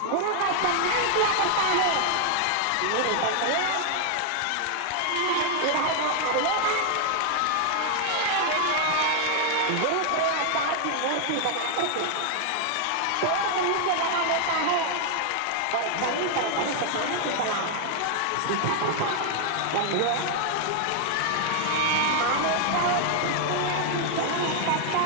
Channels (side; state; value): both; different; correlation 0.00